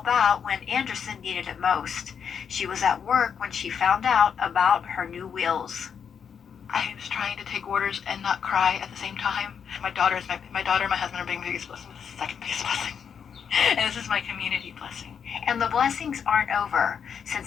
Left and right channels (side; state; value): right; quieter; 7.3 dB